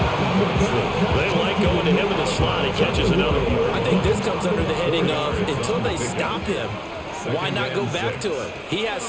They like going to him in the slot. He catches another one. I think this comes under the heading of until they stop him, why not go back to him? He has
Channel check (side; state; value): both; identical; correlation 1.00